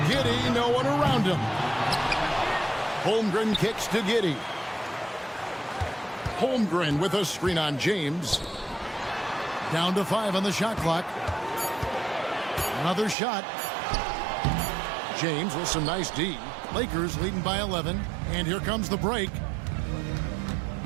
Giddey, no one around him. Holmgren kicks to Giddey. Holmgren with a screen on James. Down to 5 on the shot clock. Another shot. James with some nice D. Lakers leading by 11. And here comes the break.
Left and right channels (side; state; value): left; drops out; at 13.2 s